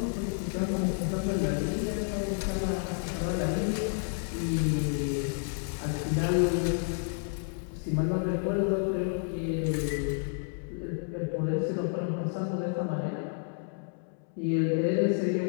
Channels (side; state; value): right; silent; 57 dB below the other